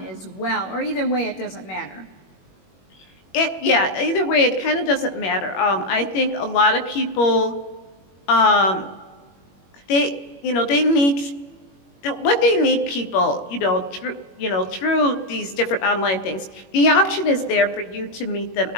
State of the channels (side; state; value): right; late; 21 ms